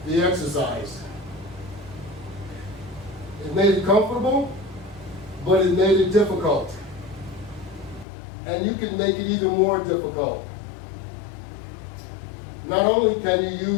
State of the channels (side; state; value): right; drops out; at 8.1 s